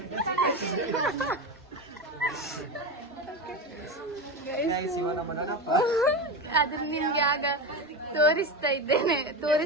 ಅದ್ರ ನಿಮ್ಗೆ ಆಗ ತೋರಿಸ್ತಾ ಇದ್ದೇನೆ.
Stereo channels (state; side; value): normal; both; correlation 0.19